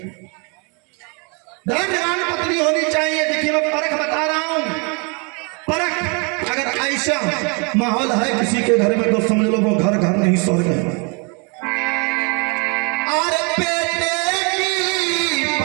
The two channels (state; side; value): quieter; left; 33.1 dB